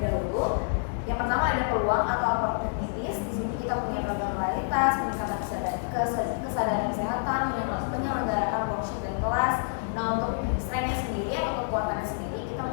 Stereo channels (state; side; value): silent; right; digital silence